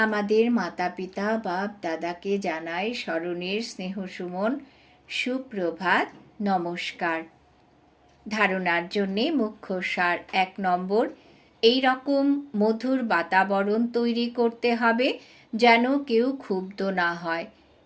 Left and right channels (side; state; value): both; identical; correlation 1.00